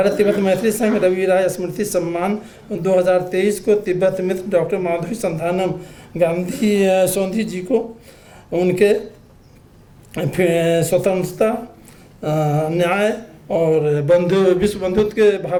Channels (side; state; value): both; identical; correlation 1.00